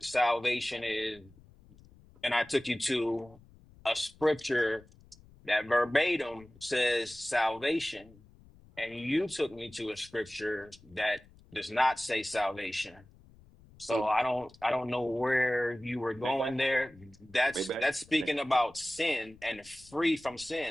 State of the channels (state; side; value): noise; left; rumble, 25 dB below the sound